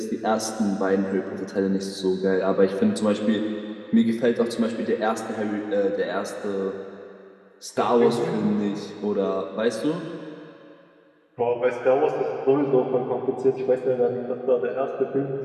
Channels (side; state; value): both; identical; correlation 1.00